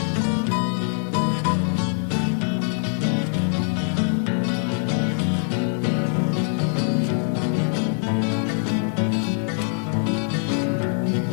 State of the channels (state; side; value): silent; right; 60 dB below the other